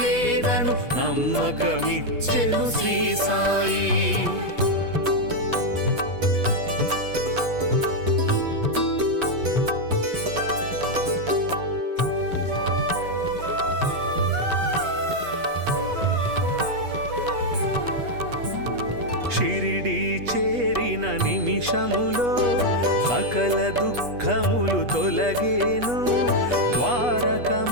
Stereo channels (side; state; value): left; late; 8.3 ms